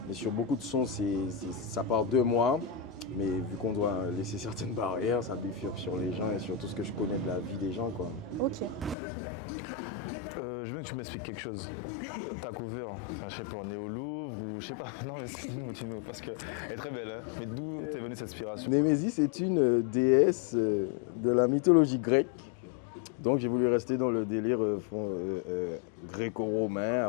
mais sur beaucoup de sons, ça part de moi. Mais vu qu'on doit laisser certaines barrières, ça bifurque sur les gens et sur tout ce que je connais de la vie des gens, quoi. Ok. Je veux que tu m'expliques quelque chose. Ta cover, je sais pas, on est au Louvre ou je sais pas. Non, mais dis-nous, parce qu'elle est très belle, hein. Mais d'où t'es venue cette inspiration? Némésis est une déesse de la mythologie grecque. Donc j'ai voulu rester dans le délire gréco-romain,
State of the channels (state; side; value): drops out; right; at 9.0 s